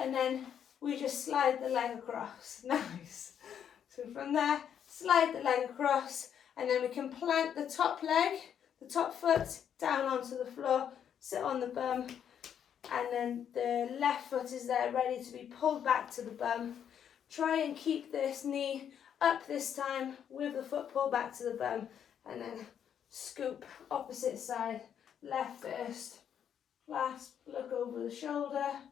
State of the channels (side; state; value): right; quieter; 8.8 dB